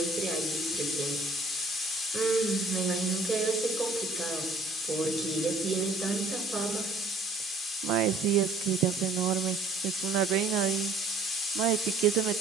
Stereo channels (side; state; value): left; quieter; 3.3 dB